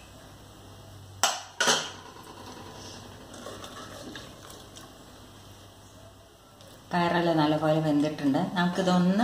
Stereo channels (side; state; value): both; identical; correlation 1.00